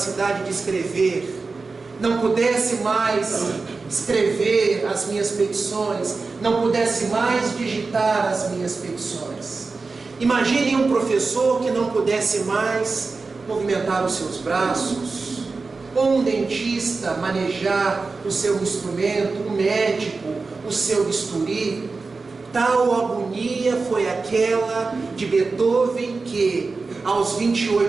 de escrever, não pudesse mais escrever as minhas petições, não pudesse mais digitar as minhas petições. Imaginem um professor que não pudesse mais movimentar os seus braços, ou um dentista manejar o seu instrumento, um médico o seu bisturi. Tal agonia foi aquela de Beethoven que, aos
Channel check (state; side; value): quieter; left; 4.1 dB